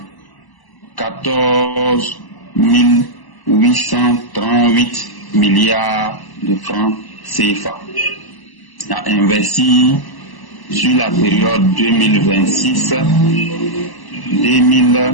838 milliards de francs CFA à investir sur la période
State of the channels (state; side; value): late; right; 1.0 ms